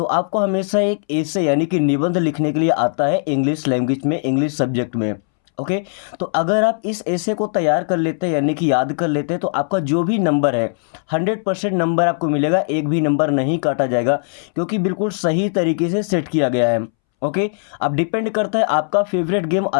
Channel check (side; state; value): right; silent; 65 dB below the other